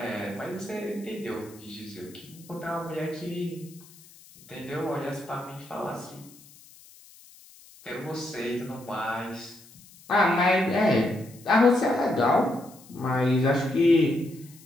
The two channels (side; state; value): left; noise; hiss, 23 dB below the sound